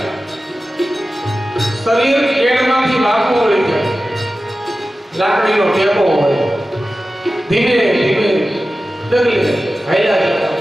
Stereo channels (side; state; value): both; normal; correlation 0.95